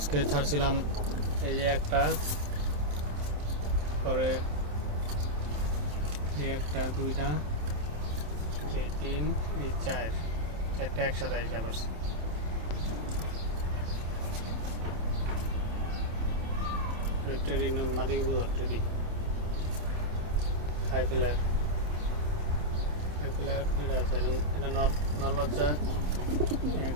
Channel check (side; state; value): left; late; 27 ms